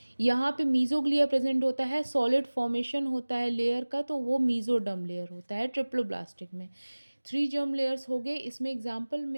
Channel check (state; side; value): inverted; both; correlation -1.00